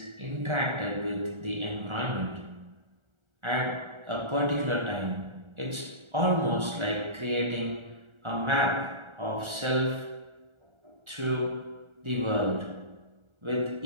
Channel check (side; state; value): left; late; 1.4 ms